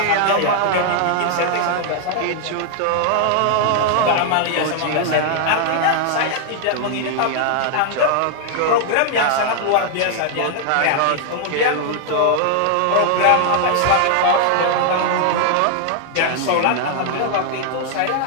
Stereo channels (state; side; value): different; both; correlation 0.00